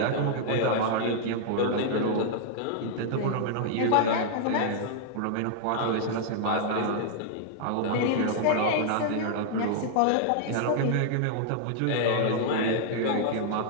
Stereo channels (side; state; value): both; different; correlation -0.01